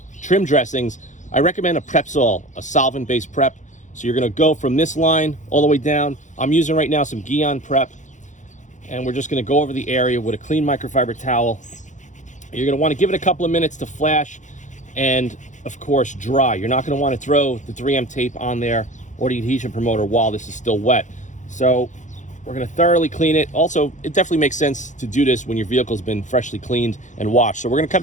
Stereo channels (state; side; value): late; right; 0.36 ms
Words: trim dressings, I recommend a Prepsol, a solvent-based prep. So you're going to go from this line all the way down. I'm using right now some Guion prep, and we're just going to go over the area with a clean microfiber towel. You're going to want to give it a couple of minutes to flash and, of course, dry. You're not going to want to throw the 3M tape on there or the adhesion promoter while this is still wet. So we're going to thoroughly clean it. Also, it definitely makes sense to do this when your vehicle's been freshly cleaned and washed. So we're going to come